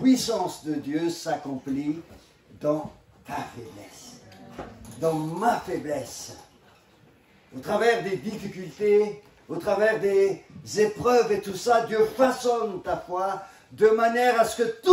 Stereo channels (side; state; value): both; identical; correlation 1.00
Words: de Dieu s'accomplit dans ta faiblesse, dans ma faiblesse, au travers des difficultés, au travers des épreuves et tout ça. Dieu façonne ta foi de manière à ce que